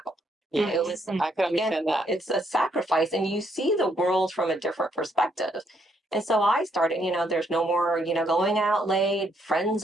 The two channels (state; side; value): normal; both; correlation 0.72